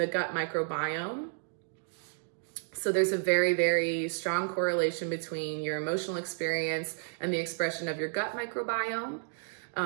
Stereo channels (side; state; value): left; silent; digital silence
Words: gut microbiome. So there's a very, very strong correlation between your emotional experience and the expression of your gut microbiome.